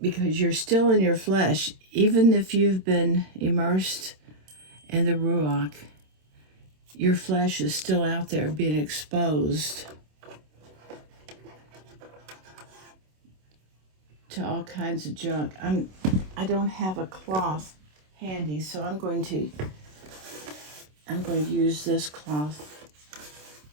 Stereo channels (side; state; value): left; late; 27 ms